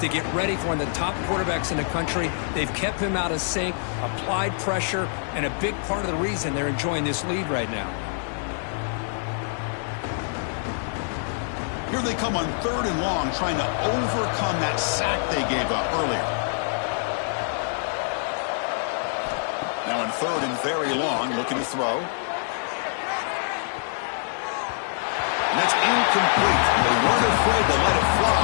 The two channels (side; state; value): right; silent; digital silence